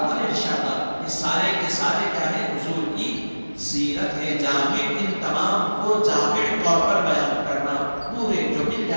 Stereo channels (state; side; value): inverted; both; correlation -1.00